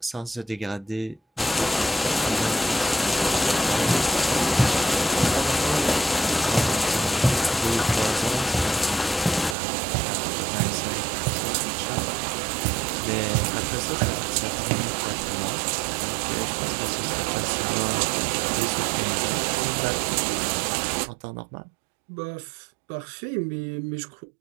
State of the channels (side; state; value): left; drops out; at 9.6 s